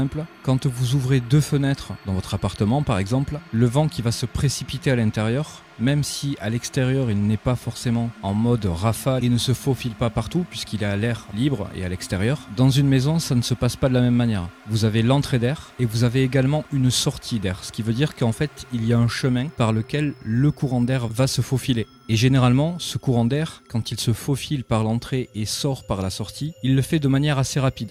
quand vous ouvrez 2 fenêtres dans votre appartement par exemple, le vent qui va se précipiter à l'intérieur, même si à l'extérieur il n'est pas forcément en mode rafale et ne se faufile pas partout puisqu'il est à l'air libre et à l'extérieur, dans une maison ça ne se passe pas de la même manière. Vous avez l'entrée d'air et vous avez également une sortie d'air, ce qui veut dire qu'en fait il y a un chemin par lequel le courant d'air va se faufiler. Et généralement, ce courant d'air, quand il se faufile par l'entrée et sort par la sortie, il le fait de manière assez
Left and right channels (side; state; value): both; identical; correlation 1.00